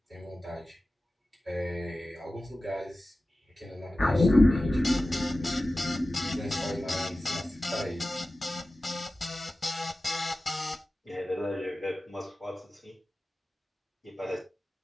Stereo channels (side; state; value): both; normal; correlation 0.96